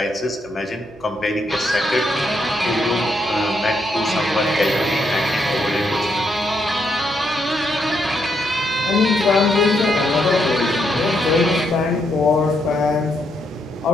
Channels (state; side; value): normal; both; correlation 0.78